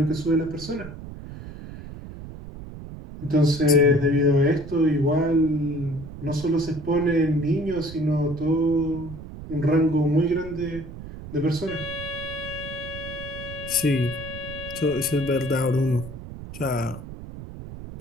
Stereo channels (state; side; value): noise; right; rumble, 12 dB below the sound